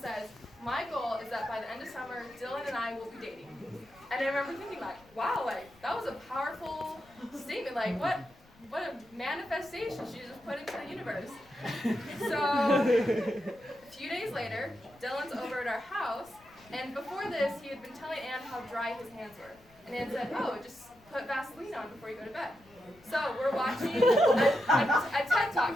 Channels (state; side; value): noise; left; rumble, 28 dB below the sound